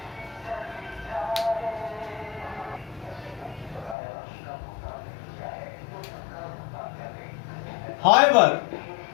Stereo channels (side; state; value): right; drops out; at 4.0 s